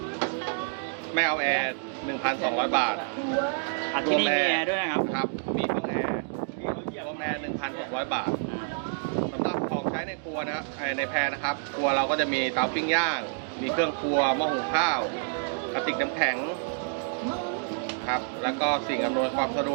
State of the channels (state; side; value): silent; left; digital silence